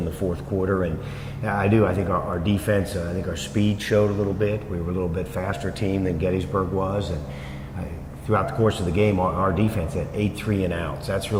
the fourth quarter. And I think our defense, I think our speed showed a little bit. We were a little bit faster team than Gettysburg was. And throughout the course of the game, our defense had 8 3-and-outs. That's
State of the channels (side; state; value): both; identical; correlation 1.00